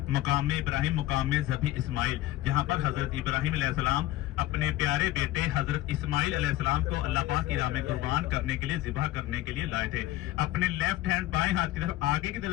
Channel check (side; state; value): right; quieter; 15.7 dB